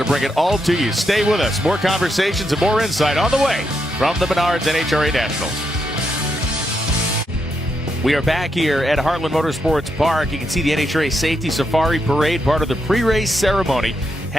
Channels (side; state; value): both; normal; correlation 0.81